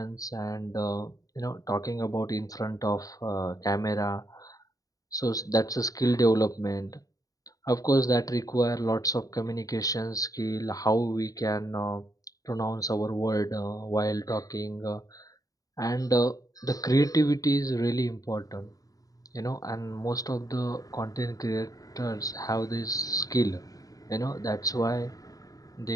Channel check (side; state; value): right; late; 0.17 ms